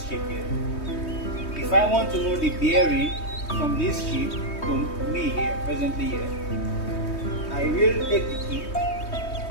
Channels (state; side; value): late; right; 3.2 ms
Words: ship here. If I want to know the bearing from this ship to me here, presently here, I will take the key,